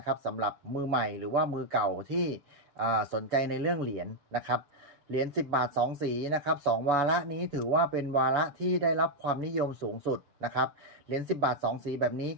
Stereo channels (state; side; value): late; left; 7.0 ms